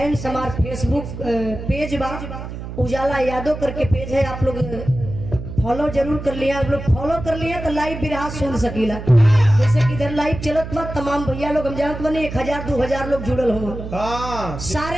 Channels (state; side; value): noise; right; hum, 9 dB below the sound